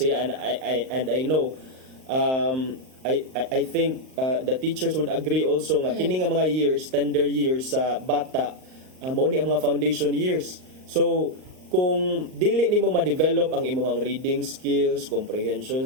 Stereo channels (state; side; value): late; left; 38 ms